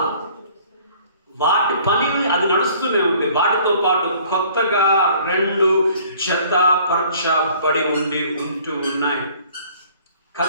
వాటి పని అది నడుస్తూనే ఉంది. వాటితో పాటు కొత్తగా 2 జతపరచబడి ఉంటూ ఉన్నాయి.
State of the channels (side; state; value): both; inverted; correlation -0.54